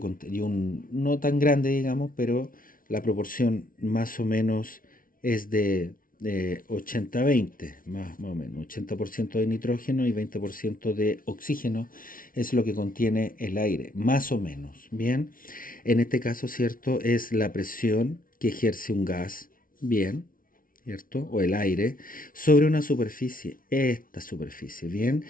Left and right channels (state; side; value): late; right; 0.40 ms